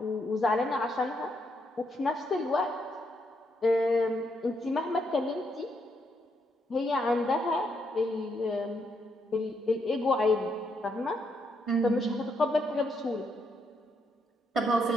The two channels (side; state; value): both; normal; correlation 0.77